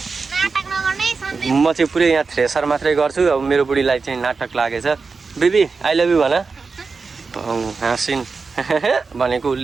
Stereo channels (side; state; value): left; quieter; 4.6 dB